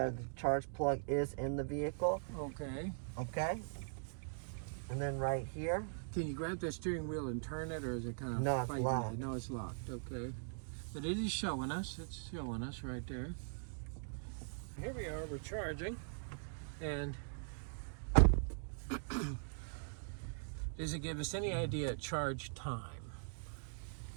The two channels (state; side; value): silent; left; digital silence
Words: the charge plug is in the vehicle. Okay. Okay. And then right here. Can you grab the steering wheel and turn it, or is it kind of No, it's fighting locked. it? No, it's locked. Okay. But it is showing us. It's showing us right there. Here we are. We're charging. And does it give us any idea of charge time?